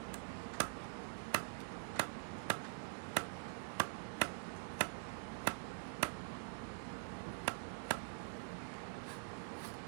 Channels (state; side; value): silent; left; digital silence